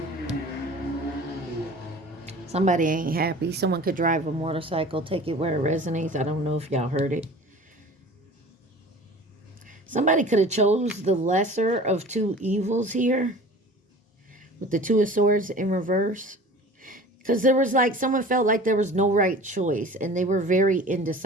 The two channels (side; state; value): both; normal; correlation 0.42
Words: Somebody ain't happy. Someone could drive a motorcycle, take it where it resonates. I don't know if y'all heard it. Somebody could have chose the lesser of 2 evils here with the 2 of Swords in reverse. Because there was like, someone felt like there was no right choice and they were very